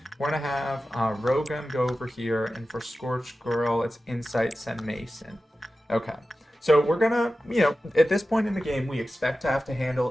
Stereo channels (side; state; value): both; normal; correlation 0.94